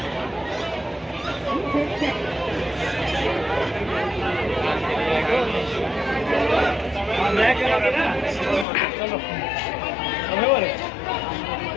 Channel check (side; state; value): right; drops out; at 8.7 s